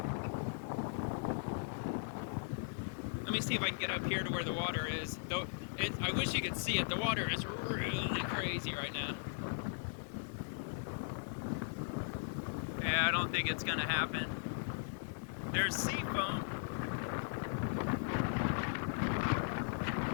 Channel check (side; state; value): right; silent; 52 dB below the other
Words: Let me see if I can get up here to where the water is. Though I wish you could see it. The water is really crazy right now. Yeah, I don't think it's gonna happen. There's sea foam.